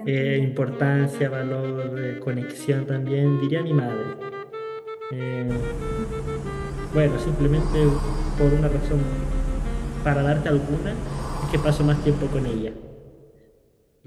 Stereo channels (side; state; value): both; identical; correlation 1.00